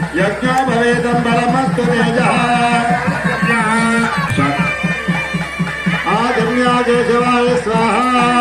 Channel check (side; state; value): both; identical; correlation 1.00